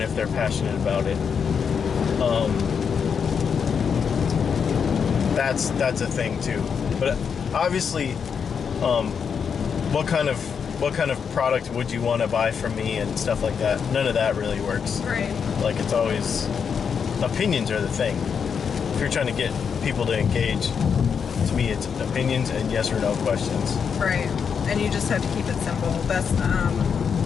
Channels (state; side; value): quieter; right; 6.7 dB